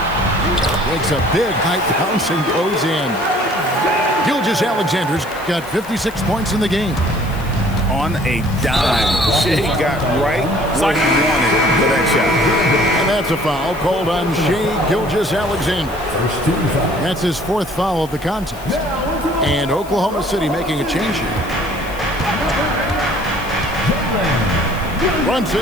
Makes a big high bounce and goes in. Gilgeous-Alexander's got 56 points in the game. On a dime, Shai got right where he wanted for that shot. And that's a foul called on Shai Gilgeous-Alexander. That's his 4th foul of the contest. And Oklahoma City making a change here.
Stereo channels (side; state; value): left; noise; hiss, 20 dB below the sound